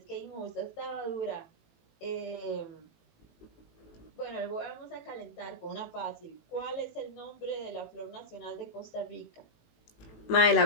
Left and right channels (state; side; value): late; right; 18 ms